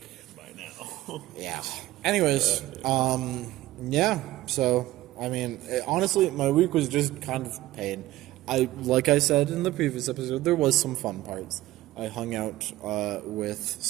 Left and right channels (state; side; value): quieter; left; 16.4 dB